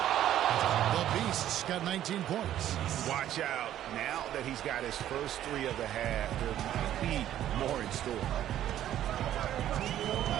The Beast's got 19 points. Watch out. Now that he's got his first 3 of the half, there might be more in store.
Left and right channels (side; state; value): left; quieter; 11.9 dB